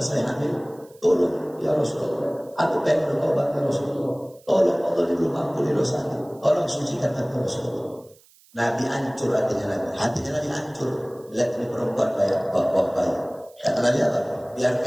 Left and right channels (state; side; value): noise; right; hiss, 28 dB below the sound